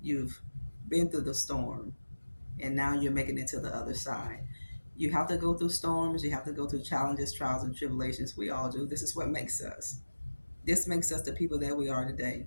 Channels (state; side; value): inverted; both; correlation -1.00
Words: You've been through the storm. And now you're making it to the other side. You have to go through storms. You have to go through challenges, trials, and tribulations. We all do. This is what makes us. This makes us the people that we are today.